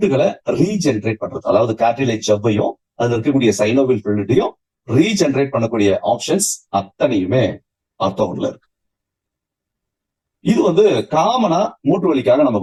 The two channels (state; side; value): identical; both; correlation 1.00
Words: ரீஜெனரேட் பண்றது. அதாவது கார்டிலேஜ் ஜவ்வையும் அதுல இருக்கக்கூடிய சைனோவியல் ஃப்ளூயிடையும் ரீஜெனரேட் பண்ணக்கூடிய ஆப்ஷன்ஸ் அத்தனையுமே ஆர்த்தோல இருக்கு. இது காமனா மூட்டு வலிக்காக நம்ம